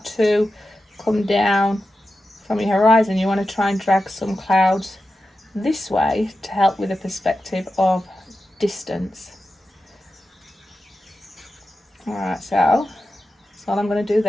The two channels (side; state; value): both; normal; correlation 0.91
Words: to come down from your horizon, you want to try and drag some clouds this way to help with the perspective of distance. Alright, so that's all I'm going to do